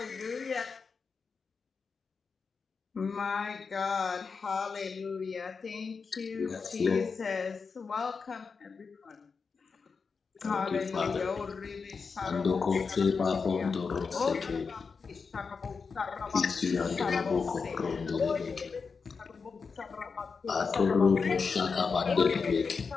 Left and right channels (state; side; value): quieter; right; 5.1 dB